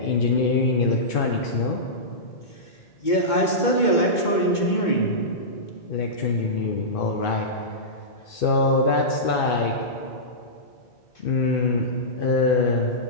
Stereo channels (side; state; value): right; late; 2.2 ms